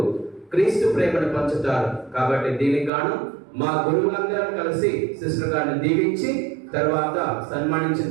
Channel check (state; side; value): drops out; left; at 2.9 s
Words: క్రీస్తు ప్రేమను పంచుతారు. కాబట్టి దీనికి గాను మా గురువులందరం కలిసి సిస్టర్ గారిని దీవించి తర్వాత సన్మానించిన